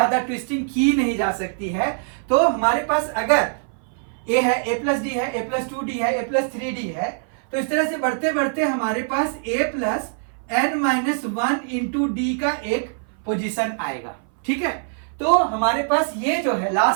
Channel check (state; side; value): silent; left; 59 dB below the other